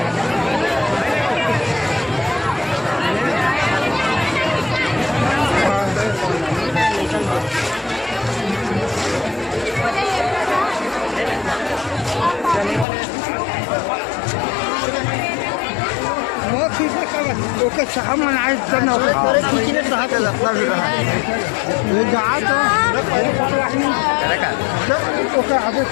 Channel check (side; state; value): right; drops out; at 12.9 s